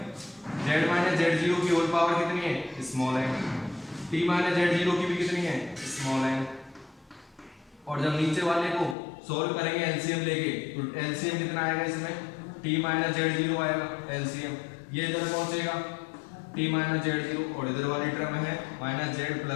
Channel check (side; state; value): right; drops out; at 9.0 s